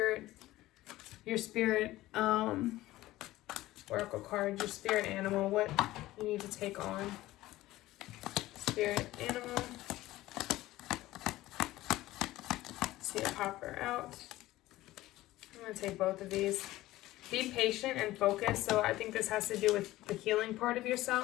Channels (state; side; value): quieter; right; 16.7 dB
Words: Oracle card, your spirit animal, what you need to take on. Spirit animal. See a popper out. I'm going to take both of these. Be patient and focused. So I think this has to do with the healing part of